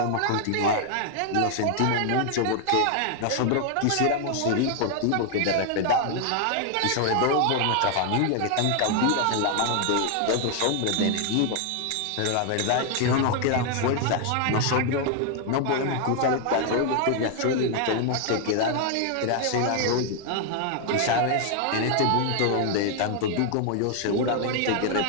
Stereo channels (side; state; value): both; different; correlation 0.00